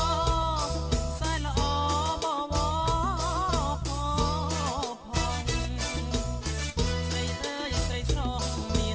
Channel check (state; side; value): identical; both; correlation 1.00